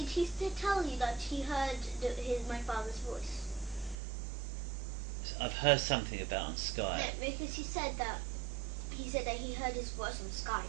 he tell you that he heard my father's voice? I've heard something about on Skype. No, because he said that he heard his voice on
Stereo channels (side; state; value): left; drops out; at 4.0 s